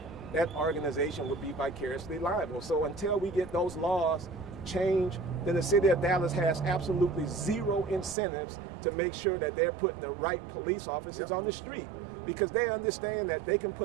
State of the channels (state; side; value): drops out; left; at 8.2 s